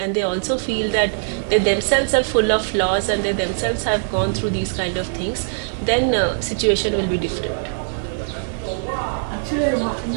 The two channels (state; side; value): silent; left; digital silence